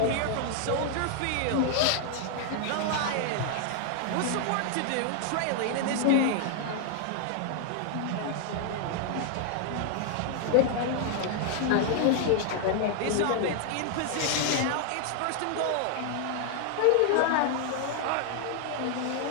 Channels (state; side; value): different; both; correlation 0.00